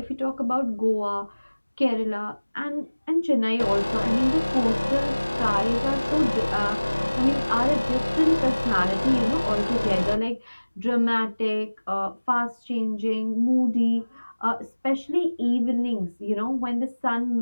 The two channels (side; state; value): both; inverted; correlation -1.00